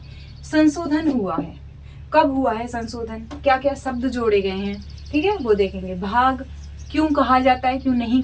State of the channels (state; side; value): identical; both; correlation 1.00